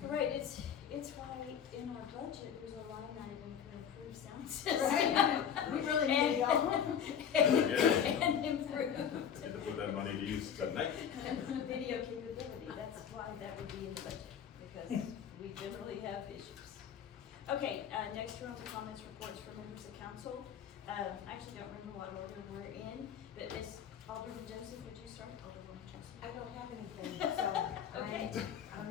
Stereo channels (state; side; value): quieter; right; 8.3 dB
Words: Right, it's why in our budget, there's a line item for improved sound system. Right. We really need y'all. And improved Get to put that money to use tonight. video capability, that's why that would be in the budget, because we generally have issues. Okay, next round of comments, reports from members of council. I actually don't remember what order we're in, but Ms. Alderman Joseph, would you start? Alderman Joseph. I don't have anything, so. Okay.